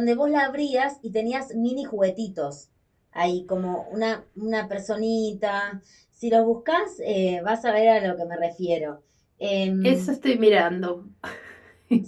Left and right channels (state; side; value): identical; both; correlation 1.00